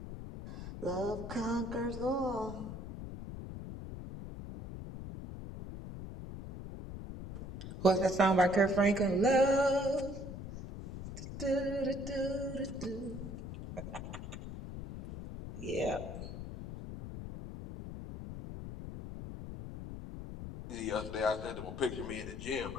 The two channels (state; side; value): noise; left; rumble, 9 dB below the sound